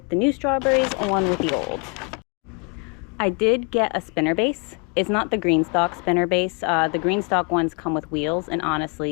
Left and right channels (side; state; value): right; quieter; 33.7 dB